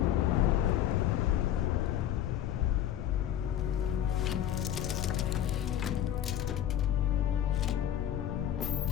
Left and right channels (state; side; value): quieter; right; 11.0 dB